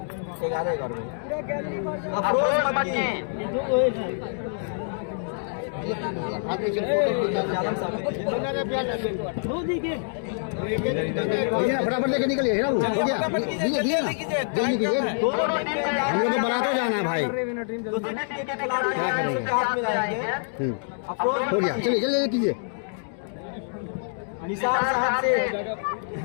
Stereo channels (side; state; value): right; silent; digital silence